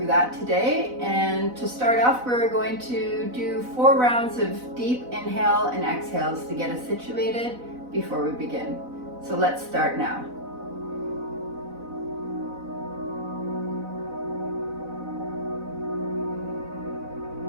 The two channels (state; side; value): late; left; 4.0 ms